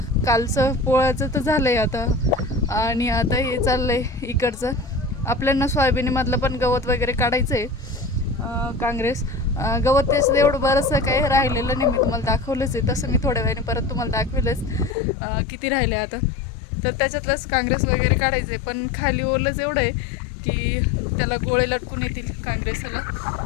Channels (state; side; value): drops out; right; at 15.0 s